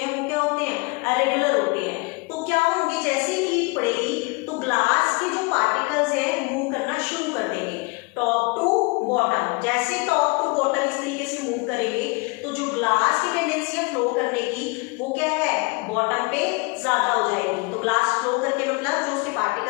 वो क्या होते हैं, रेगुलर होते हैं। तो क्या होंगे, जैसे ही हीट पड़ेगी तो ग्लास के जो पार्टिकल्स है मूव करना शुरू कर देंगे टॉप टू बॉटम। जैसे टॉप टू बॉटम इस तरीके से मूव करेंगे तो जो ग्लास की टेंडेंसी है फ्लो करने की, वो क्या है, बॉटम पे ज्यादा हो जाएगी। तो ग्लास फ्लो करके मतलब जो उसके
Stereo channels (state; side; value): quieter; right; 28.1 dB